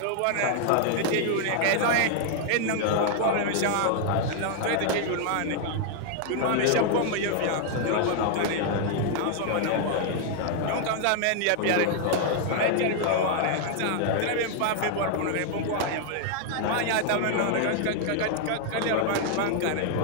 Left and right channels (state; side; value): different; both; correlation 0.00